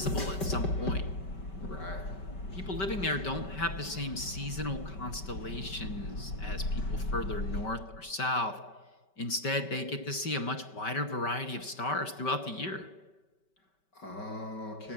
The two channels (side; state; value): right; late; 5.2 ms